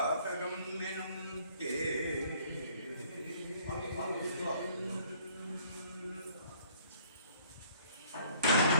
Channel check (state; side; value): inverted; both; correlation -0.58